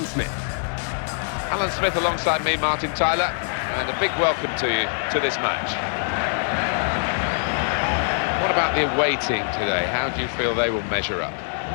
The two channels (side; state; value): right; silent; 60 dB below the other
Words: Smith. Alan Smith alongside me, Martin Tyler, and a big welcome to you to this match. What about the away team today? How do you feel they will measure up?